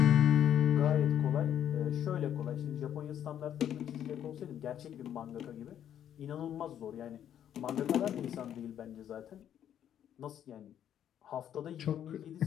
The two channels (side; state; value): right; quieter; 10.1 dB